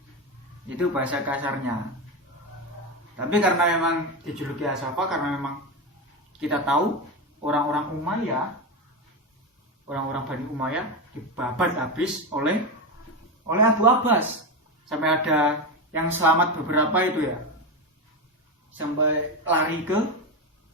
Itu bahasa kasarnya. Tapi karena memang dijuluki As-Saffah karena memang kita tahu orang-orang Bani Umayyah dibabat habis oleh Abu Abbas. Sampai ada yang selamat beberapa itu ya. Sampai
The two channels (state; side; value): normal; both; correlation 0.15